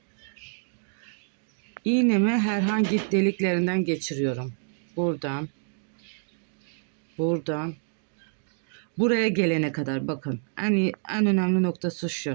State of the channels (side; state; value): left; silent; 60 dB below the other